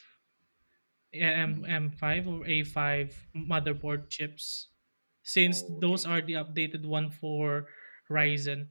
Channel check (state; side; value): inverted; both; correlation -1.00